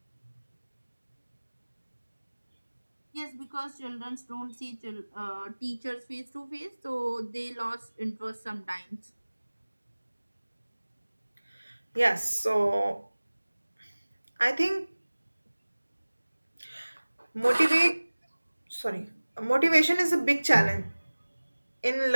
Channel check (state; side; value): inverted; both; correlation -1.00